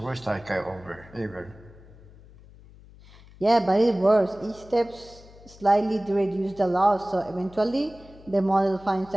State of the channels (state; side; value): noise; left; hum, 22 dB below the sound